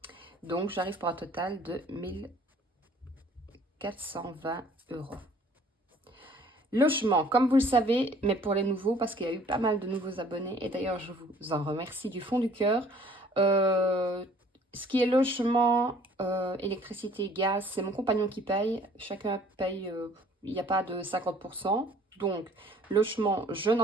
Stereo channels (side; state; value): both; normal; correlation 0.55